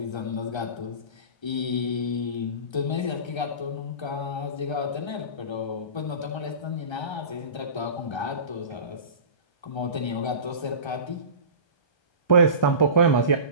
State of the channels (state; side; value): late; right; 1.3 ms